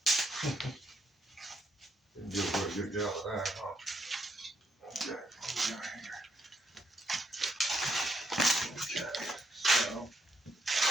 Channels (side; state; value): both; normal; correlation 0.76